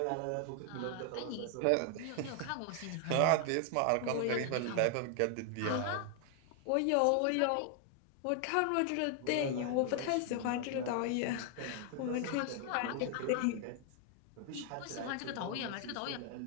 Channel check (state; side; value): different; both; correlation 0.00